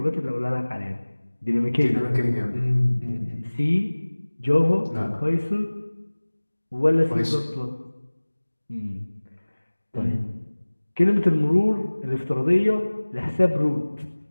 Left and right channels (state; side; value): inverted; both; correlation -1.00